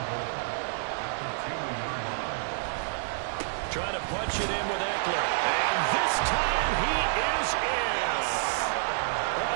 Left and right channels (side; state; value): left; silent; digital silence